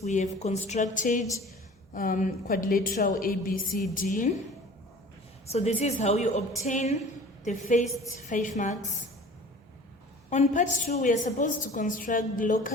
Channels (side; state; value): both; normal; correlation 0.44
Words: we have constructed quadrilateral ABCD. So this is how you obtain the first 5 marks. On part 2, we are supposed to construct the